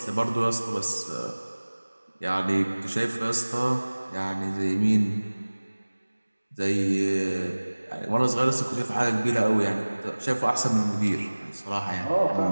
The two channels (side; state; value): both; inverted; correlation -1.00